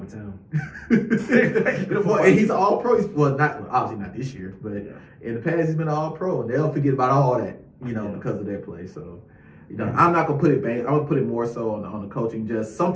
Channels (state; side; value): identical; both; correlation 1.00